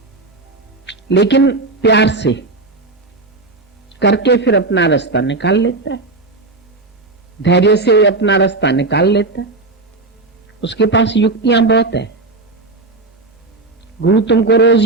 लेकिन प्यार से करके फिर अपना रास्ता निकाल लेता है, धैर्य से अपना रास्ता निकाल लेता है। उसके पास युक्तियां बहुत है। गुरु तुमको रोज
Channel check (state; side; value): quieter; left; 3.3 dB